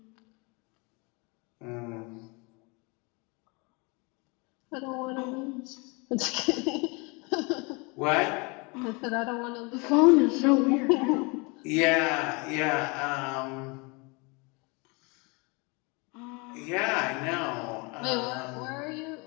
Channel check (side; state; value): right; quieter; 29.3 dB